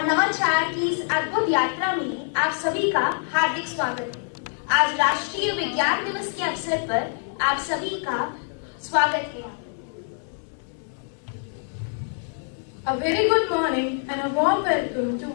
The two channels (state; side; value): silent; right; 62 dB below the other